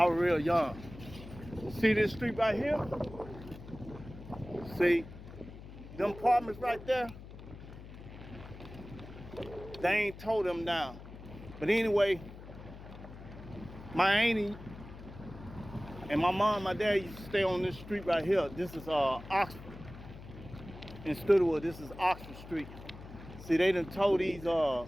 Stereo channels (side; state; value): left; noise; hum, 15 dB below the sound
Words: was real young. See this street right here? See them apartments right there? They ain't tore them down. But anyway, my auntie and my mom and my dad used to stay on this street right here. This is Oxford. In Studewood, this is Oxford Street. See, they done tore these, I'm